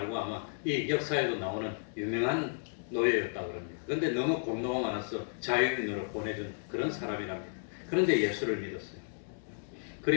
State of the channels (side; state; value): right; silent; digital silence